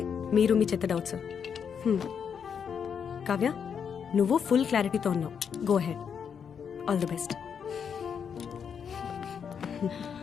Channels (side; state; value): right; quieter; 7.2 dB